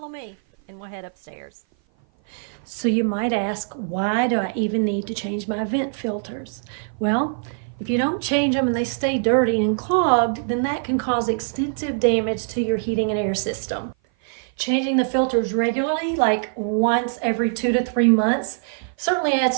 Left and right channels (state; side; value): silent; left; 57 dB below the other